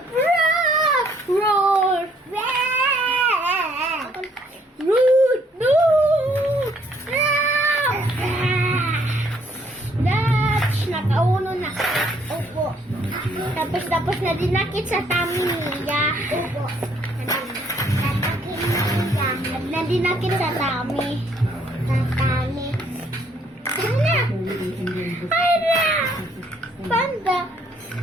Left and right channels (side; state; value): both; normal; correlation 0.66